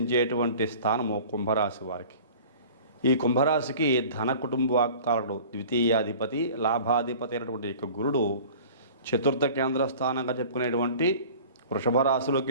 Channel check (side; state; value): both; inverted; correlation -0.43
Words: స్థానము కుంభరాశి వారికి. ఈ కుంభరాశికి ధన కుటుంబాకారుడు, ద్వితీయాధిపతి, లాభాధిపతి అయినటువంటి యొక్క గురుడు చతుర్థ కేంద్ర స్థానంగా చెప్పుకునేటువంటి వృషభ